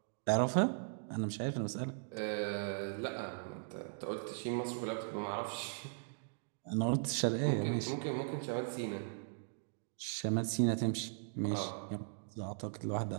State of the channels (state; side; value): silent; left; digital silence